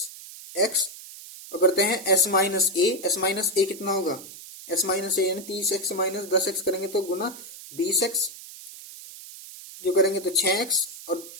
और करते हैं s माइनस ए कितना होगा s माइनस ए, यानी 30x माइनस 10x करेंगे तो गुना 20x, जो करेंगे तो 6x और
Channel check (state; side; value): noise; right; hiss, 15 dB below the sound